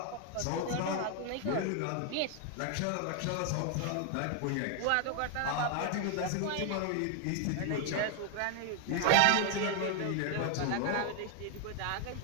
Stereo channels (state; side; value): different; both; correlation 0.00